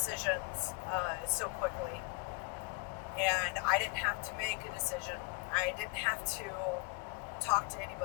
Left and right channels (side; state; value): right; quieter; 28.6 dB